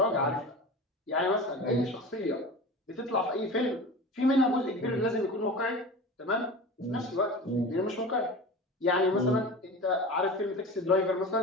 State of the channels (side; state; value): both; normal; correlation 0.33